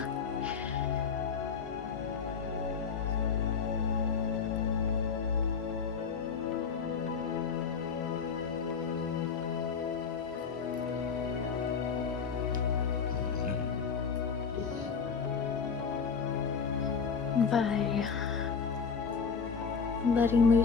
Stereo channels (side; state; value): right; quieter; 5.9 dB